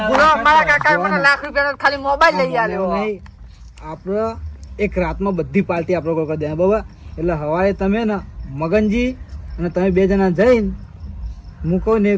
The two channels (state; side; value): identical; both; correlation 1.00